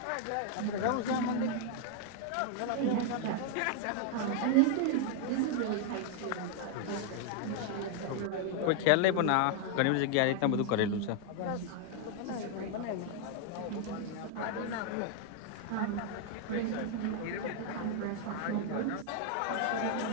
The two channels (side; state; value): both; different; correlation 0.00